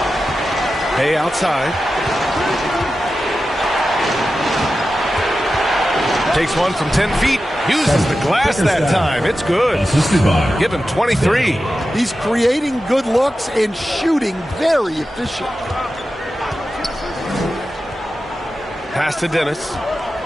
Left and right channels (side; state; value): both; normal; correlation 0.92